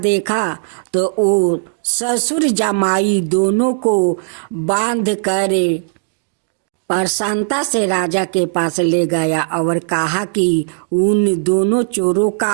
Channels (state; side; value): silent; left; digital silence